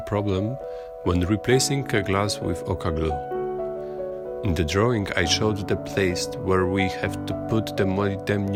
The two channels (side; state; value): both; identical; correlation 1.00